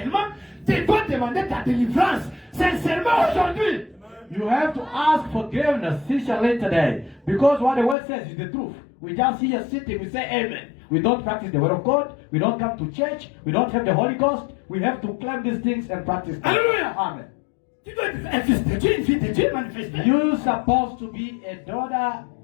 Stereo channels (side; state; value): right; drops out; at 8.0 s